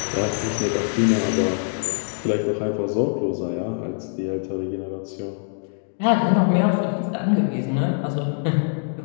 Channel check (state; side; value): silent; right; digital silence